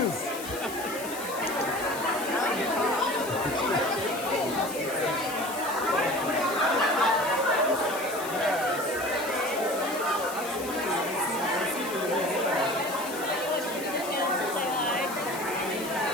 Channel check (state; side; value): noise; left; hiss, 11 dB below the sound